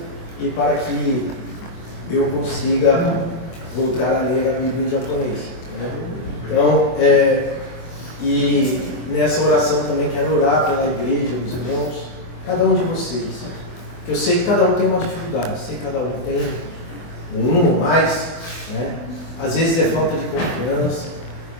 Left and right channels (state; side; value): late; right; 24 ms